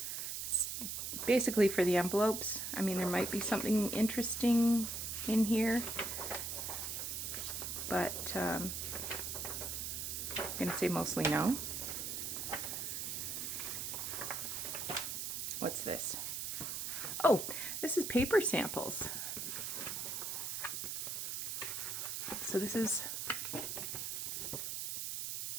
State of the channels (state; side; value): noise; right; hiss, 3 dB below the sound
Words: is basically for the envelopes. I mean, there might be something interesting in here, but I'm gonna say mostly no. What's this? Oh, this is paper samples. So this is